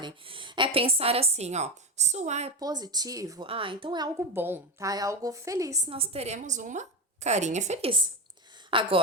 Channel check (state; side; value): normal; both; correlation 0.16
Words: é pensar assim, ó, se o A é positivo, então é algo bom, tá? É algo feliz, nós teremos uma carinha feliz.